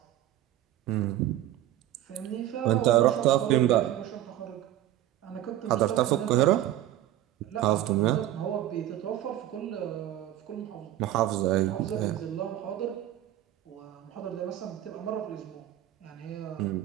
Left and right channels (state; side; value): quieter; left; 13.2 dB